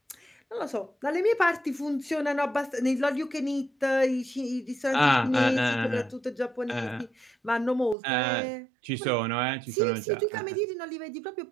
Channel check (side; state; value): left; drops out; at 8.0 s